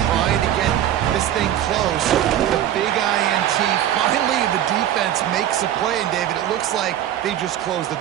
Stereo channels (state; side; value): quieter; left; 11.4 dB